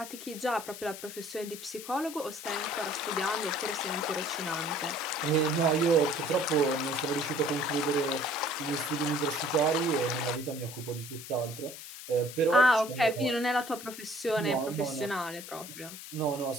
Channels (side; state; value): left; noise; hiss, 12 dB below the sound